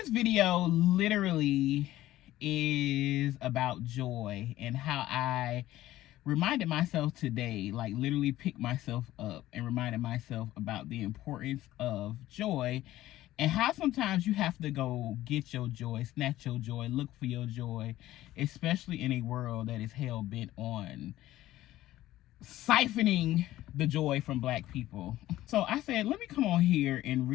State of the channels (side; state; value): right; quieter; 15.0 dB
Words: video literally is about joy and how I reminded myself today, like literally picked myself up and reminded myself about the importance of joy and how sometimes you have to go get your joy, snatch your joy, look for your joy, especially in a world that is hell-bent on siphoning the joy from Black people. So I said, let me come on here and